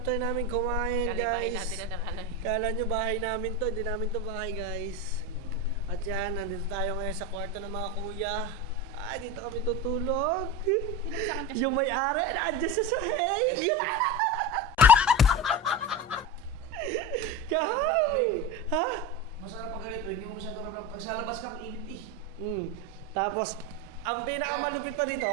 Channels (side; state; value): both; normal; correlation 0.23